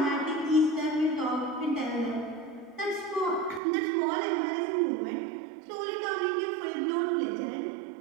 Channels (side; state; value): left; drops out; at 3.6 s